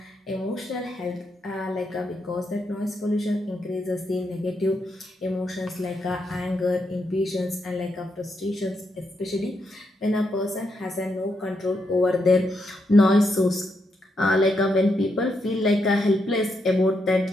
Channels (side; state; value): both; normal; correlation 0.81